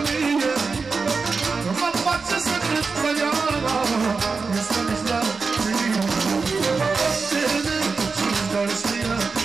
Mă face să cred că ea este mizarea Mă coptele și-și doresc ea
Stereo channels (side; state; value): left; quieter; 4.6 dB